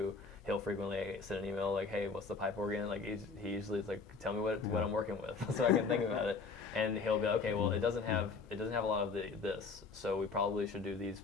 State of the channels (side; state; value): right; quieter; 4.6 dB